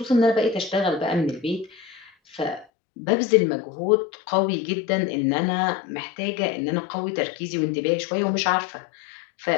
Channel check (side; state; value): right; drops out; at 2.7 s